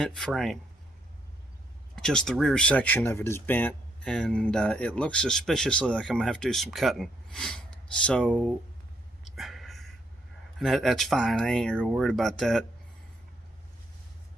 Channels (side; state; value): both; normal; correlation 0.73